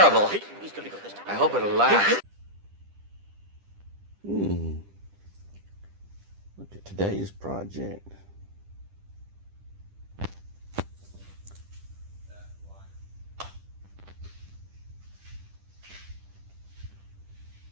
I hope it'll last. Look at today's project.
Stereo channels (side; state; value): left; late; 10 ms